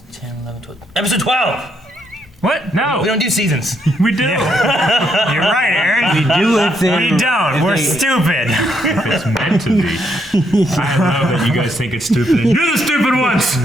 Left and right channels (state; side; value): normal; both; correlation 0.75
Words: 10, 11, 12... Episode 12! What? No. We don't do seasons. We do. You're right, Aaron. We do if they... We don't. We're stupid. If it's meant to be. I love that you guys think it's stupid. You're the stupid ones!